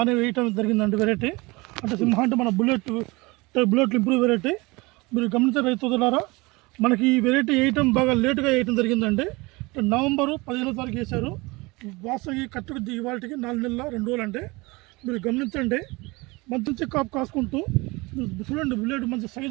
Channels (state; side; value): quieter; left; 23.9 dB